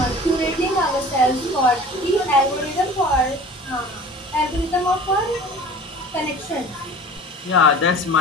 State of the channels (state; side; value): normal; both; correlation 0.42